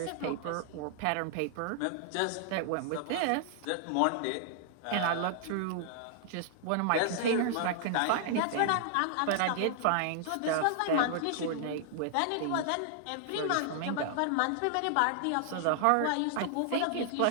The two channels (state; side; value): different; both; correlation -0.01